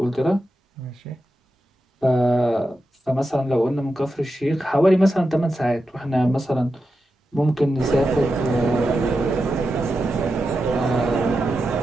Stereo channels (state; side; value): normal; both; correlation 0.89